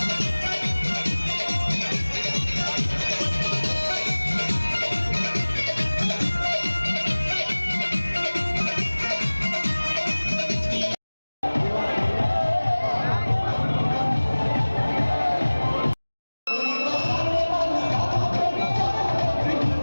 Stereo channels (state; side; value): inverted; both; correlation -1.00